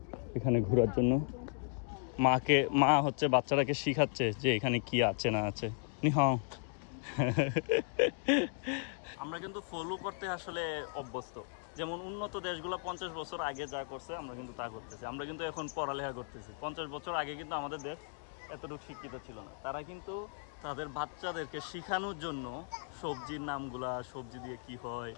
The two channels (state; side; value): silent; right; 54 dB below the other